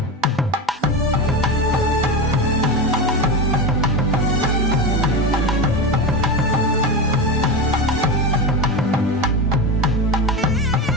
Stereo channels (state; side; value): normal; both; correlation 0.20